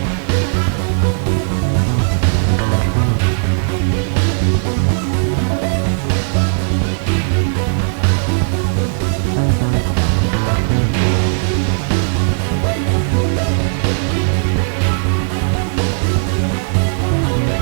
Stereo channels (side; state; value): left; silent; digital silence